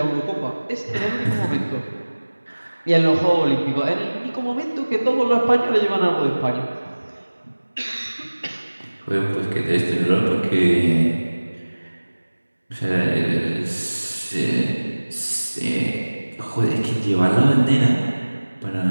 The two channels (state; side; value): inverted; both; correlation -1.00